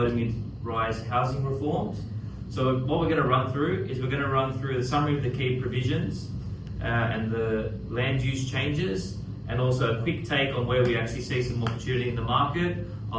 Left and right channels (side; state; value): both; identical; correlation 1.00